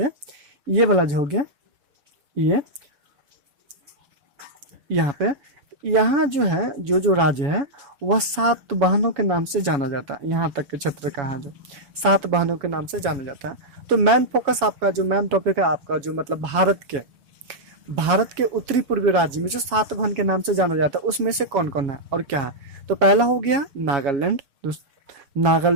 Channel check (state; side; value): late; left; 7.2 ms